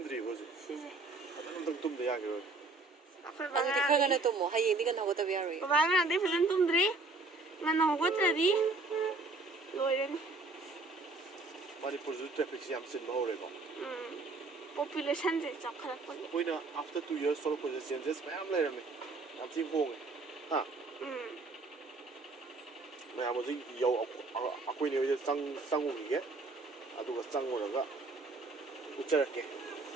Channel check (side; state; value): left; quieter; 3.5 dB